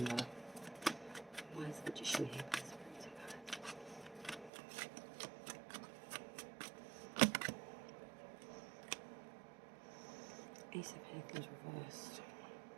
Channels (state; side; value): drops out; left; at 4.5 s